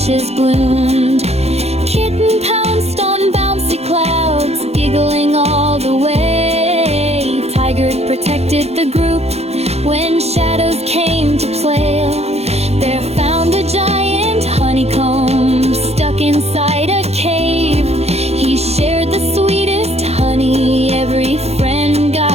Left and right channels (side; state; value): left; late; 0.31 ms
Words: bloomed. Kitten pounced on bouncy clouds, giggling all the way. Tiger protected the group when shadows came to play. Bear found a giant honeycomb stuck inside a cave. He shared the sweetest honey, every friend